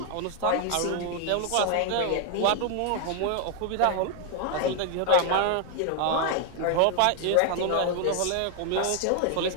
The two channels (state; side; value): different; both; correlation 0.00